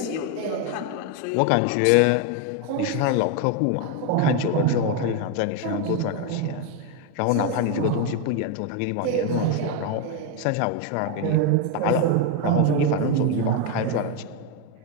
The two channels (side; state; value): both; different; correlation 0.02